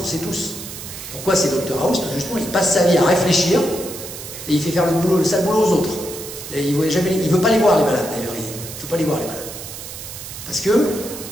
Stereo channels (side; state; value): right; noise; hiss, 11 dB below the sound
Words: on sait tous. Pourquoi c'est Dr House? Parce que justement, il passe sa vie à réfléchir et il fait faire le sale boulot aux autres. Et il ne veut pas les voir, les malades, d'ailleurs. Il ne veut pas les voir, les malades. Parce que